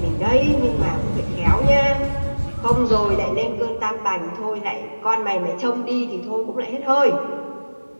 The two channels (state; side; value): inverted; both; correlation -1.00